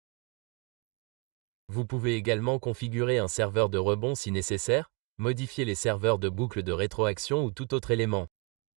Vous pouvez également configurer un serveur de rebond si nécessaire, modifier les serveurs de boucle de rétroaction ou tout autre élément.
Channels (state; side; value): quieter; left; 28.5 dB